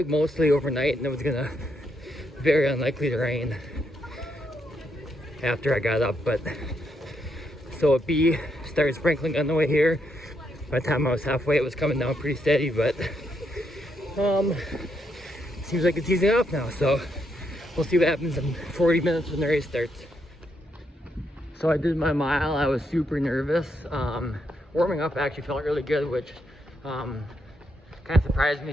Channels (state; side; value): normal; both; correlation 0.78